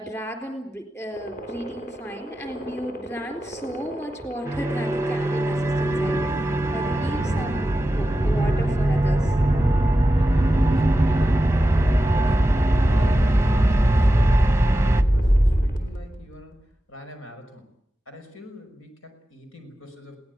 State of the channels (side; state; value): both; normal; correlation 0.92